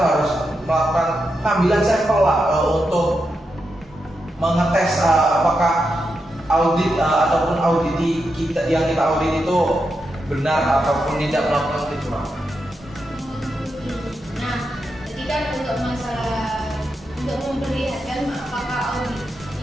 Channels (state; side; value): normal; both; correlation 0.86